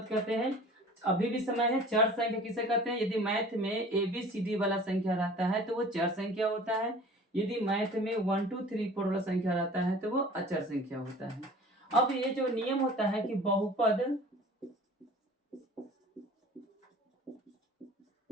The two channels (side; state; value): both; normal; correlation 0.44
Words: कहते हैं। अभी भी समय है, चर संख्या किसे कहते हैं? यदि मैथ में ABCD वाला संख्या रहता है तो वो चर संख्या होता है। यदि मैथ में 1 2 3 4 वाला संख्या रहता है तो वो अचर संख्या होता है। अब ये जो नियम होता है कि बहुपद